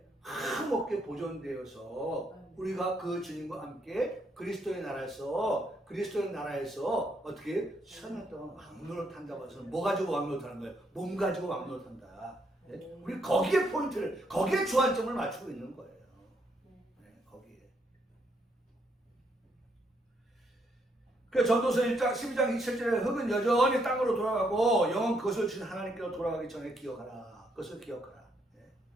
흠없게 보존되어서 우리가 그 주님과 함께 그리스도의 나라에서 어떻게 1000년 동안 왕노릇 한다고 해서 뭐 가지고 왕노릇 하는 거예요? 몸 가지고 왕노릇 한다. 우리 거기에 포인트를, 거기에 주안점을 맞추고 있는 거예요. 거기에. 그 전도서 1장 12장 27절에 흙은 여전히 땅으로 돌아가고 영은 그것을 주신 하나님께로 돌아가기 전에 기억하라. 그것을 기억하라.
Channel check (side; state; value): both; normal; correlation 0.74